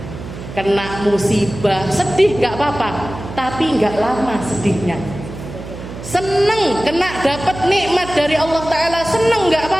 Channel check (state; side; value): noise; right; hum, 11 dB below the sound